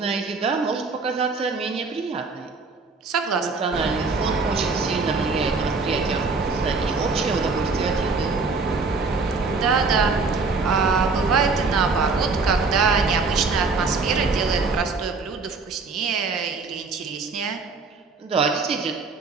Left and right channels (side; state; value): left; quieter; 4.2 dB